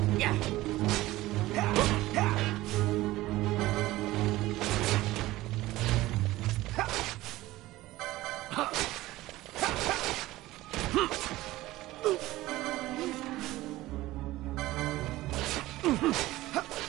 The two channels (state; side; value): quieter; left; 17.4 dB